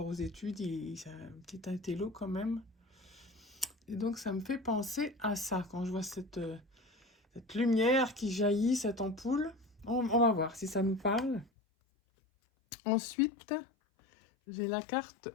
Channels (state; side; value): drops out; right; at 11.5 s